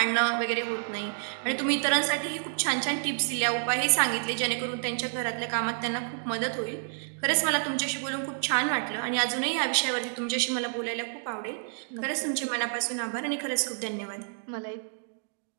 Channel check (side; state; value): left; silent; digital silence